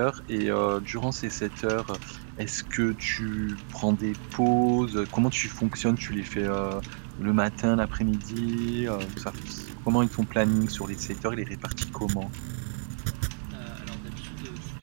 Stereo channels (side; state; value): left; silent; 59 dB below the other